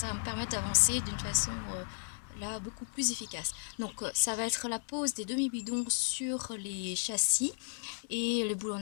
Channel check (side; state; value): right; silent; 55 dB below the other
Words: va me permettre d'avancer d'une façon là beaucoup plus efficace. Donc ça va être la pose des demi-bidons sur les châssis et le